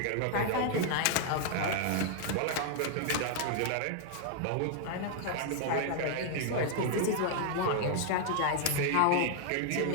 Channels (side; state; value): both; different; correlation 0.00